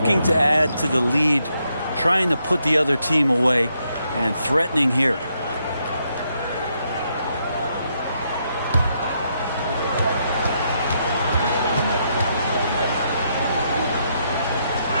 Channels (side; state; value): both; inverted; correlation -0.78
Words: to add to the lead, trying to put the other team away, and threatening here.